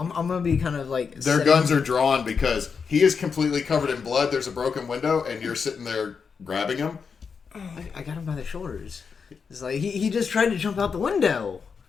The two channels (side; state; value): right; quieter; 5.8 dB